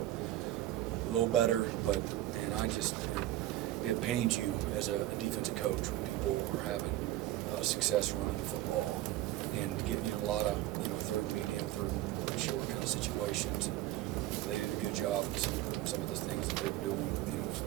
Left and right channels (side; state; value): left; quieter; 14.9 dB